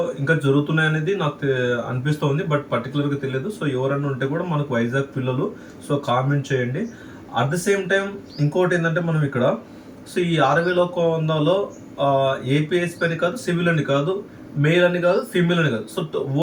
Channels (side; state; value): both; identical; correlation 1.00